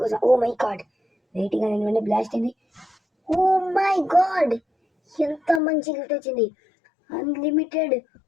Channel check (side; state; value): right; drops out; at 5.6 s